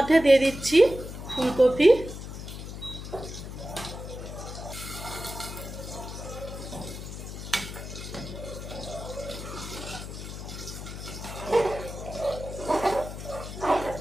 দিয়ে দিচ্ছি ফুলকপি,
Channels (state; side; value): noise; left; hum, 9 dB below the sound